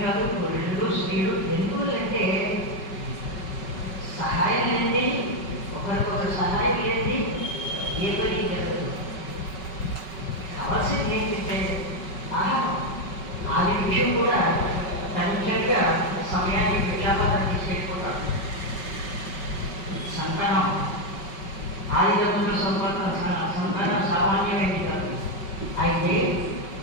కాదు, పురుషులు స్త్రీలు ఎందుకంటే సహాయం లేనిది, ఒకరికొకరు సహాయం లేనిది ఏ పని జరగదు. కావాల్సింది ఏంటంటే ఆహారం. ఆది విషయం కూడా తనిఖీగా సమయాన్ని విజ్ఞాపన తీసుకెళ్ళిపోతాం. సంతానం ఆదిదంతుల సంతానం సామాన్యమైనది కాదు. అయితే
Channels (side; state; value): right; late; 5.3 ms